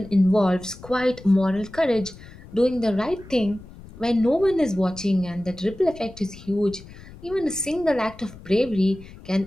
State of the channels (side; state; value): left; noise; rumble, 18 dB below the sound